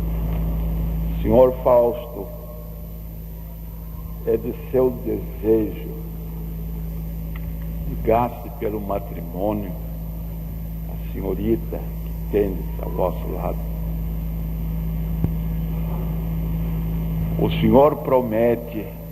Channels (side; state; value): both; identical; correlation 1.00